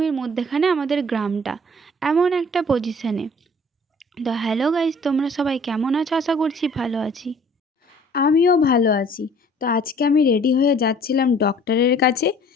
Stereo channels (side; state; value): both; normal; correlation 0.53